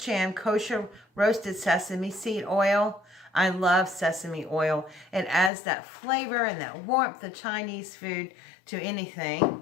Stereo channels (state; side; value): drops out; right; at 5.5 s